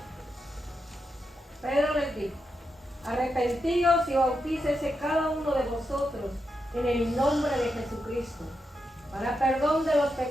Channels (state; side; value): normal; both; correlation 0.86